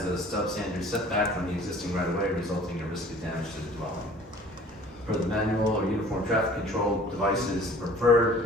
a substandard setback from the existing right-of-way, resulting in a risk of damage to the dwelling. Per the manual or uniform traffic control devices, the preferred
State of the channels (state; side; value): normal; both; correlation 0.49